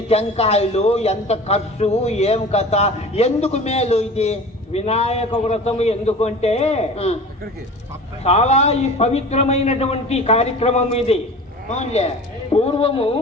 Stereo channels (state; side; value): normal; both; correlation 0.38